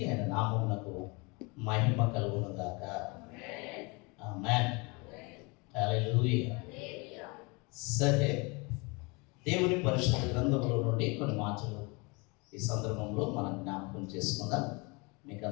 ఆయన నామమునకు మహిమ కలుగును గాక. ఆమేన్. హల్లెలూయా. సరే, దేవుని పరిశుద్ధ గ్రంథములో నుండి కొన్ని మాటలు ఈ సందర్భంలో మనం జ్ఞాపకం చేసుకుందాం. మీకు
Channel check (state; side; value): quieter; right; 28.4 dB